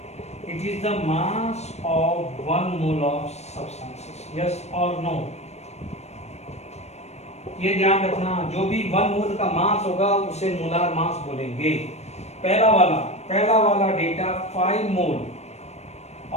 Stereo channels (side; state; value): right; late; 0.31 ms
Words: It is the mass of 1 mole of substances. Yes or no? ये ध्यान रखना, जो भी 1 मोल का मास होगा उसे मोलार मास बोलेंगे। पहला वाला डेटा 5 मोल